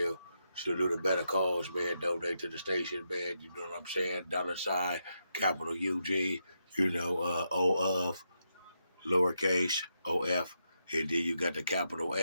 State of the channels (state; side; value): inverted; both; correlation -0.84